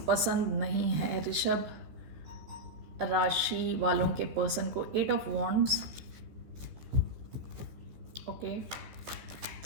पसंद नहीं है ऋषभ राशि वालों के पर्सन को। 8 of wands, okay,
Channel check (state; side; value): late; left; 14 ms